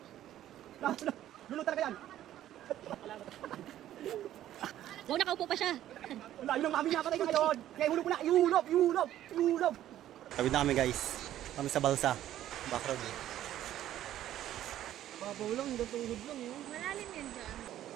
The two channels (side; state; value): left; quieter; 12.5 dB